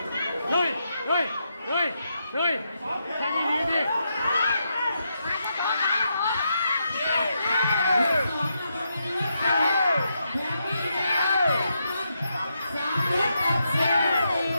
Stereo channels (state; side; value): inverted; both; correlation -0.82